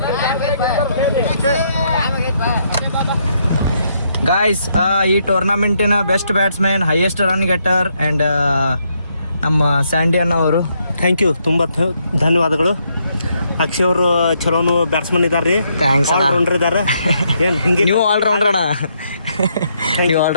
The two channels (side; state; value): both; inverted; correlation -0.75